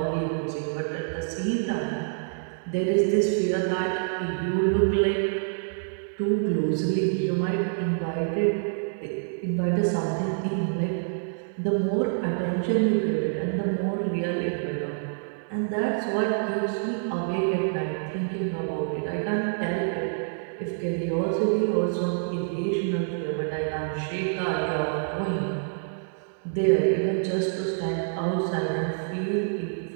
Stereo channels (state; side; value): silent; left; 60 dB below the other